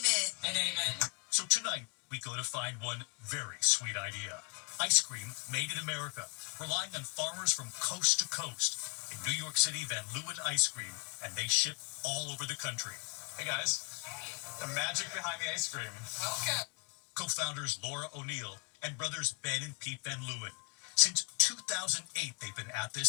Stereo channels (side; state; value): right; quieter; 36.8 dB